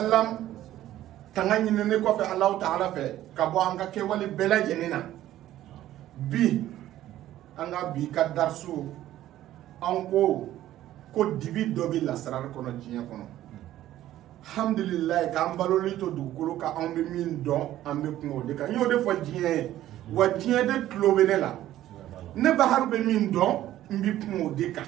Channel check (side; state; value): left; quieter; 13.5 dB